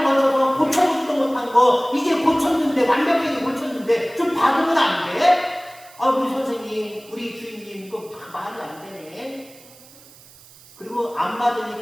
걸쳐서 고쳐보지도 못한 거 이제 고쳤는데, 완벽하게 고쳤는데 좀 받으면 안 돼? 우리 선생님, 우리 주인님, 이거 말이 안 되네. 그리고 안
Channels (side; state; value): right; noise; hiss, 23 dB below the sound